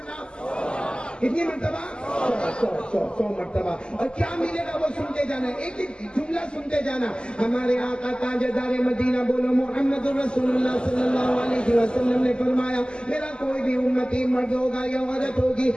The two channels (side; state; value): right; late; 0.049 ms